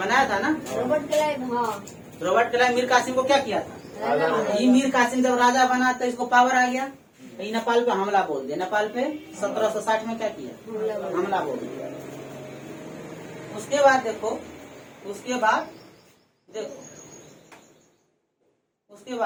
था ना रॉबर्ट क्लाइव। हाँ, रॉबर्ट क्लाइव मीर कासिम को क्या किया था? ये मीर कासिम जब राजा बना तो इसको पावर आ गया, ये नेपाल पे हमला बोल दिया। नेपाल पे 1760 में क्या किया? हमला बोल दिया। उसके बाद देखो, उसके बाद देखो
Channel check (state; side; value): identical; both; correlation 1.00